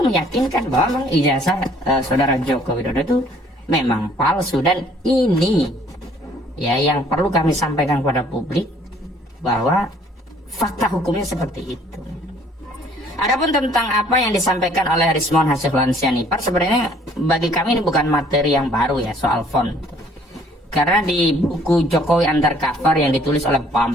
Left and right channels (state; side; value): normal; both; correlation 0.59